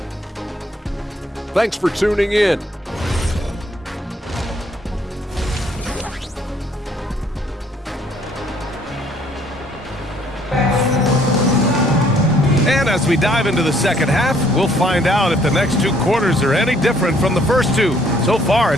thanks for tuning in. And as we dive into the second half, we'll find out if the next 2 quarters are any different from the first 2. So far,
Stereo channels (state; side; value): normal; both; correlation 0.63